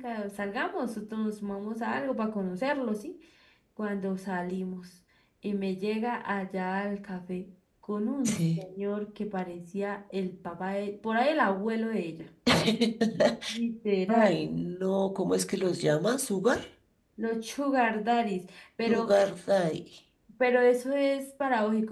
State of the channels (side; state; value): both; identical; correlation 1.00